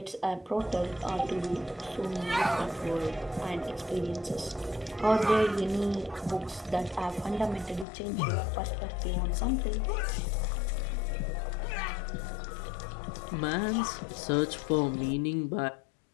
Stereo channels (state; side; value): drops out; right; at 7.9 s